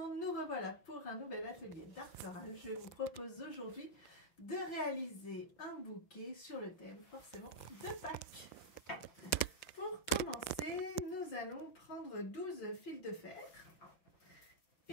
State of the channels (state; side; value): late; right; 5.9 ms